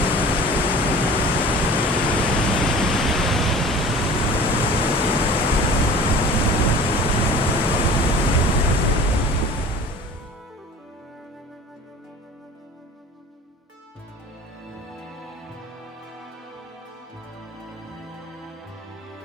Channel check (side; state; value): both; normal; correlation 0.42